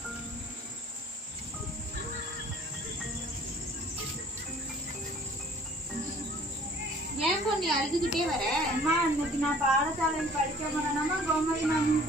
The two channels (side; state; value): both; normal; correlation 0.52